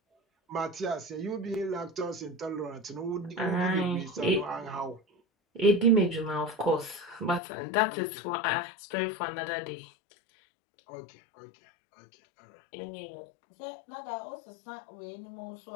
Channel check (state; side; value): drops out; right; at 7.4 s